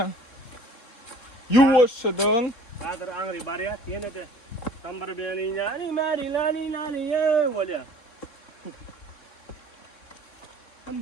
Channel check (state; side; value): late; right; 3.7 ms